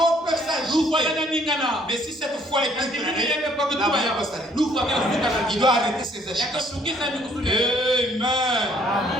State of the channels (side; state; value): both; normal; correlation 0.63